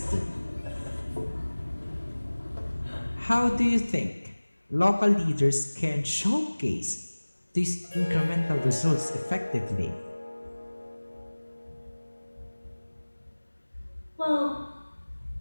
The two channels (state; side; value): inverted; both; correlation -1.00